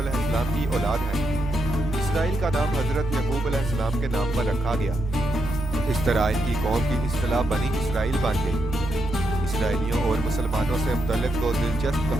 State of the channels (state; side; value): normal; both; correlation 0.82